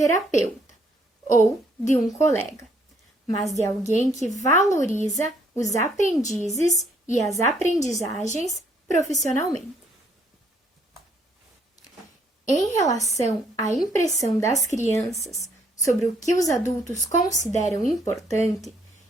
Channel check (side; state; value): both; normal; correlation 0.67